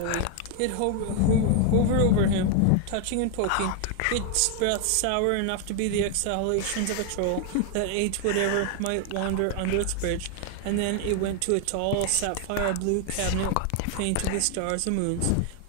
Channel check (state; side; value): different; both; correlation 0.00